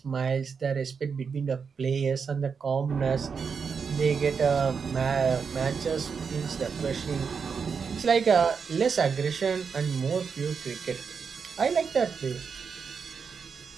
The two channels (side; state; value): left; quieter; 5.9 dB